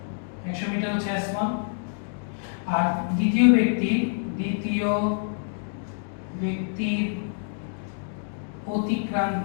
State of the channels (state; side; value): silent; right; digital silence